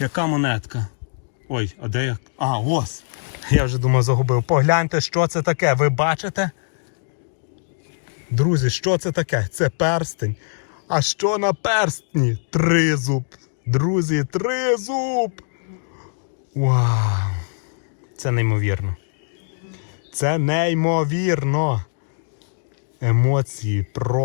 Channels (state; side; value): silent; right; digital silence